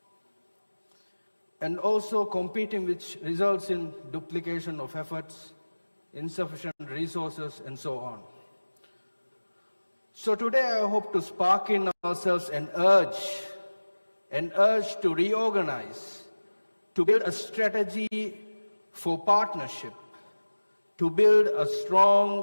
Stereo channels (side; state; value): both; inverted; correlation -1.00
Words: And also competing, which results in duplication of efforts, insufficient resources, and so on. So today I hope to spark in ourselves an urge to reorganize, to build a strategy for partnership, to build a